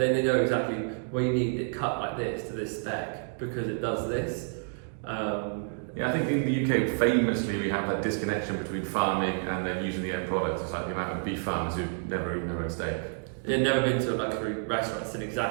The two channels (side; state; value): left; silent; 58 dB below the other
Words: they know exactly, well, you need it cut like this to this spec because it does this. I think in the UK, famously, we have that disconnection between farming and then using the end product. It's like the amount of beef farmers who never eaten their own steak. They've never been to a luxury restaurant and seen